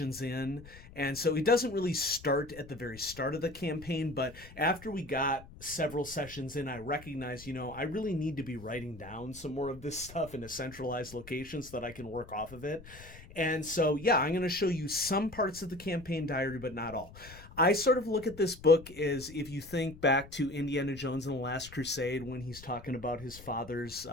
in, and so it doesn't really start at the very start of the campaign. But after we got several sessions in, I recognized, I really need to be writing down some more of this stuff in a centralized location so that I can work off of it. And so I'm going to show you some parts of the campaign diary, but not all. I sort of look at this book as, if you think back to Indiana Jones and the Last Crusade, when he's talking about his father's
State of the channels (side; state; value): left; noise; rumble, 18 dB below the sound